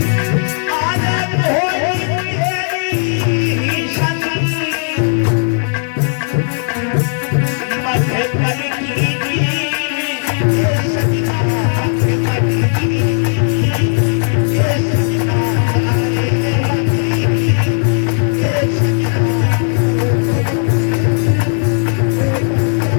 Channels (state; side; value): silent; right; 70 dB below the other